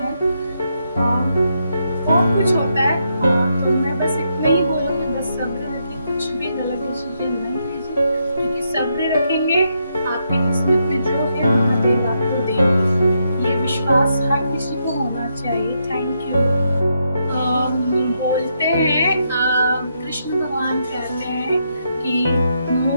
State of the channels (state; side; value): inverted; both; correlation -0.80